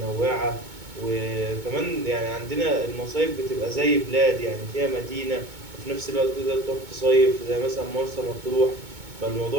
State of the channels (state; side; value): late; left; 2.2 ms